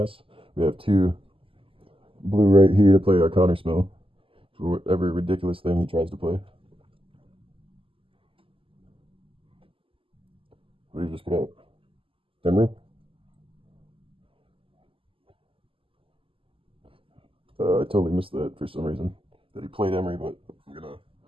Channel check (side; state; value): left; late; 0.26 ms